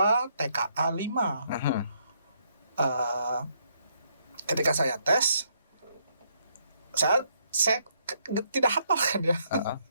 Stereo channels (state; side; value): inverted; both; correlation -0.73